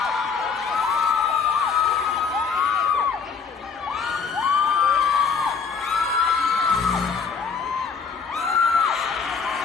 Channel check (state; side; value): quieter; right; 5.7 dB